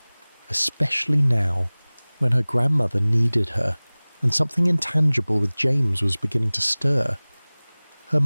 Especially now, when her grandmother needed her, and something intangible with James was beginning to stir. Her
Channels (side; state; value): both; inverted; correlation -1.00